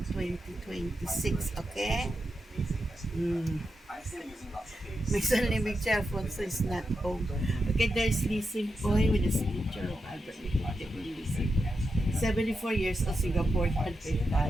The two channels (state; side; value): normal; both; correlation 0.87